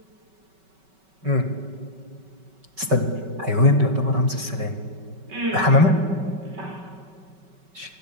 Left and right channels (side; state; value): left; late; 5.3 ms